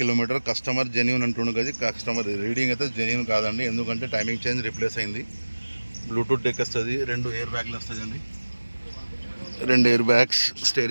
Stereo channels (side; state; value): both; inverted; correlation -1.00